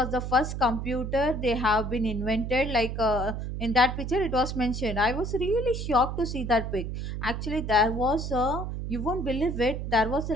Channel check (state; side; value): noise; right; hum, 5 dB below the sound